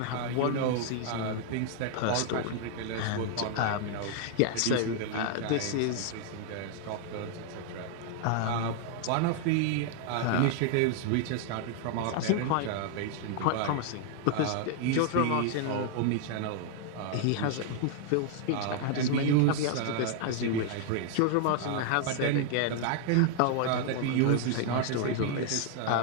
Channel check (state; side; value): different; both; correlation 0.00